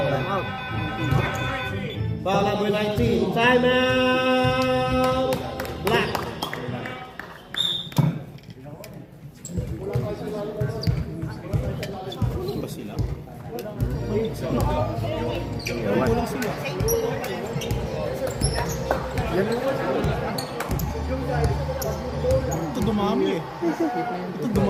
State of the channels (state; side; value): identical; both; correlation 1.00